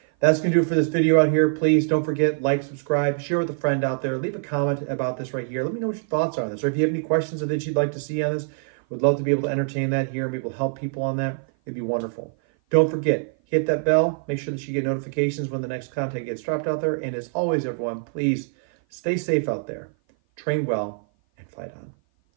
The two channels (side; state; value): left; silent; 56 dB below the other